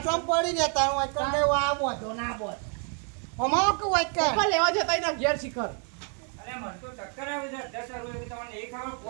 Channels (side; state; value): left; quieter; 39.3 dB